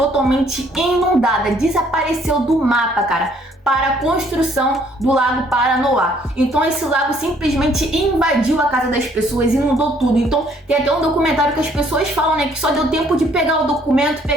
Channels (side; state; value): both; normal; correlation 0.63